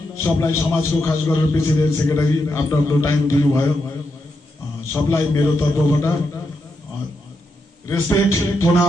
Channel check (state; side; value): normal; both; correlation 0.84